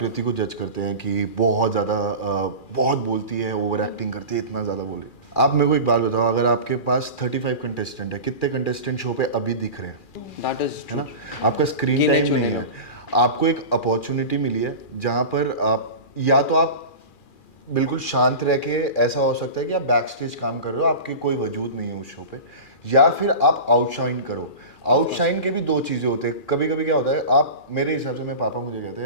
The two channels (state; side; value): late; right; 2.4 ms